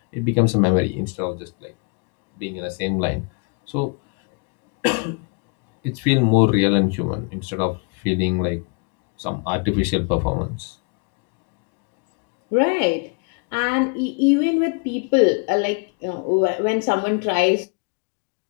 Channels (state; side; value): quieter; right; 34.8 dB